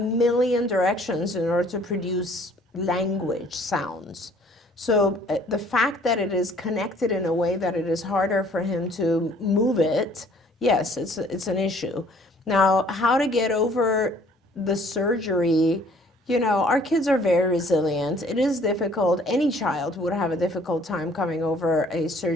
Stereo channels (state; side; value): normal; both; correlation 0.57